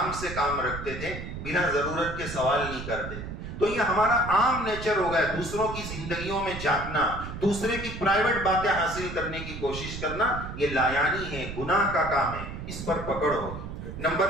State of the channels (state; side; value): noise; right; rumble, 8 dB below the sound